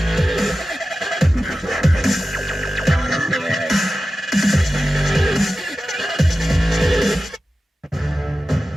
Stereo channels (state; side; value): normal; both; correlation 0.93